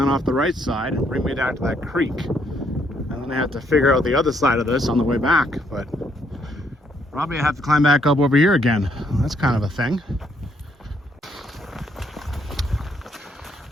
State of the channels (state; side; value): normal; both; correlation 0.71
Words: off the right side and bring me down to that creek. And then I have to figure out the other side of this on the way back. But probably I have to climb back up over here again. That's kind of a thing.